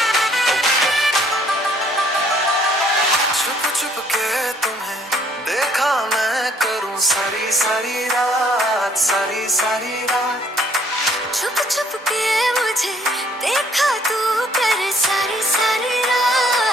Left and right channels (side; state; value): both; normal; correlation 0.63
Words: छुप के तुम्हें देखा मैं करूं सारी सारी रात सारी सारी रात छुप छुप के मुझे देखा तू कर सारी सारी